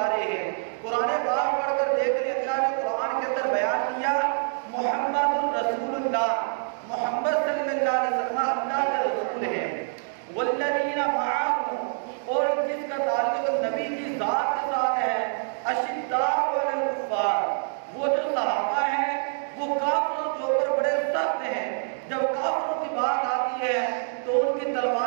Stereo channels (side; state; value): left; silent; digital silence